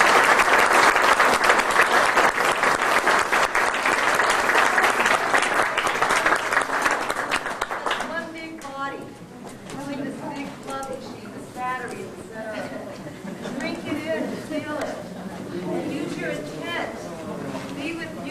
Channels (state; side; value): identical; both; correlation 1.00